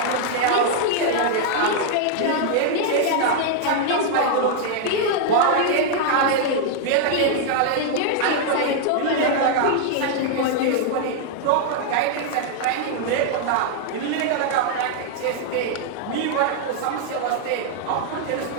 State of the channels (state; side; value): different; both; correlation -0.01